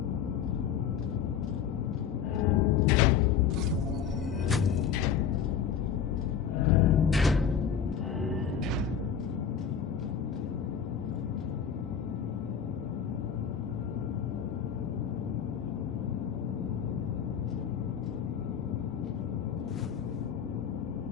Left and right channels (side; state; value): right; quieter; 7.8 dB